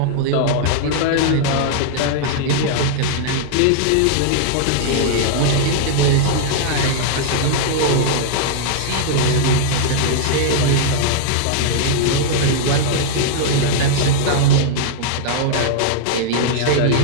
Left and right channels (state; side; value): different; both; correlation -0.01